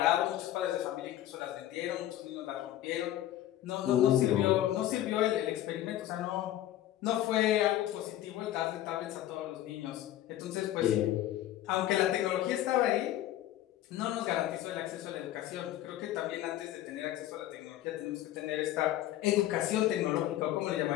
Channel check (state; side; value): quieter; right; 13.3 dB